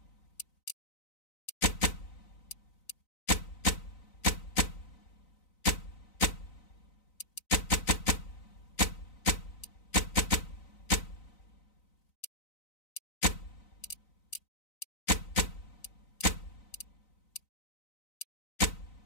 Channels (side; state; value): right; late; 3.9 ms